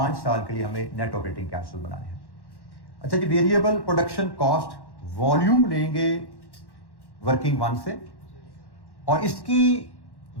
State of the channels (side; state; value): right; late; 1.1 ms